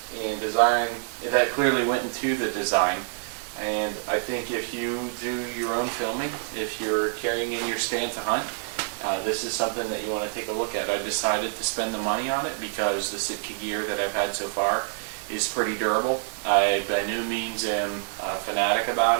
and design that clearly went into the design. And I think if you do your own filming, if you're carrying in your stand to hunt, this is something that you want to take a look at. I decided to spend the money on it because the Sitka gear that I've had so far is pretty durable. I by no means am a fanatic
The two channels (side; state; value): left; silent; digital silence